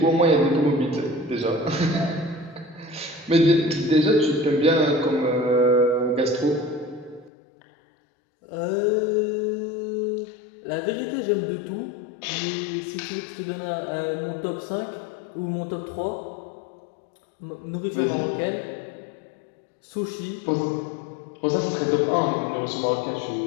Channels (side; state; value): right; drops out; at 7.3 s